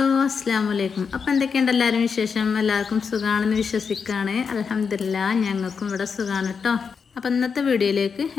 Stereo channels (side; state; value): right; quieter; 5.9 dB